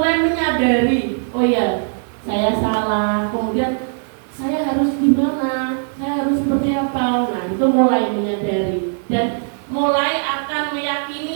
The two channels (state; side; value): silent; left; digital silence